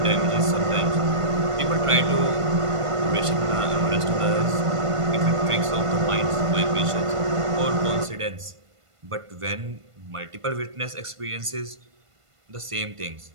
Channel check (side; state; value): left; late; 1.5 ms